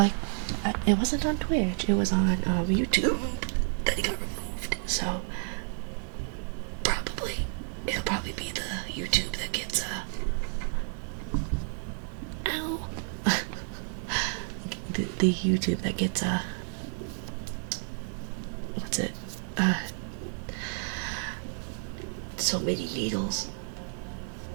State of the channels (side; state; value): left; silent; 55 dB below the other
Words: it wasn't on Twitch. It was on YouTube that it got removed. So it'll probably be the YouTube that gets ow. the YouTube that gets what's it? So many needles.